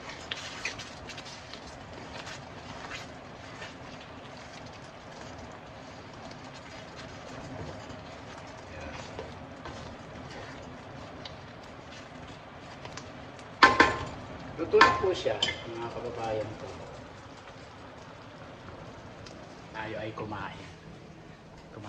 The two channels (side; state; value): both; identical; correlation 1.00